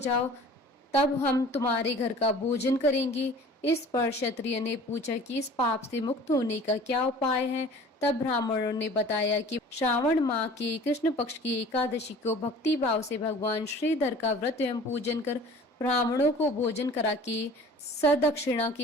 तब हम तुम्हारे घर का भोजन करेंगे। इस पर क्षत्रिय ने पूछा कि इस पाप से मुक्त होने का क्या उपाय है। तब ब्राह्मणों ने बताया कि श्रावण माह के कृष्ण पक्ष की एकादशी को भक्ति भाव से भगवान श्रीधर का व्रत एवं पूजन कर ब्राह्मणों को भोजन करा के सदक्षिणा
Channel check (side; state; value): both; normal; correlation 0.46